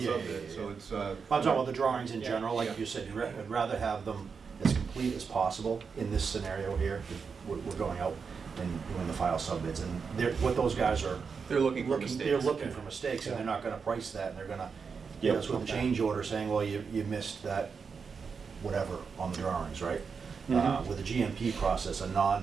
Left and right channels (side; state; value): left; quieter; 5.6 dB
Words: sub-bid, yeah. so it's. I'm talking about the drawings in general, like Yeah. you said, I'd rather have them as complete complete as possible in this scenario here. We're going out and doing the file subbids, and what those guys are They're looking for mistakes. they're looking for mistakes, and they're not gonna price that, and they're gonna hit us with a change order saying, well, you missed that, whatever, on the drawings, right? With a GMP process, a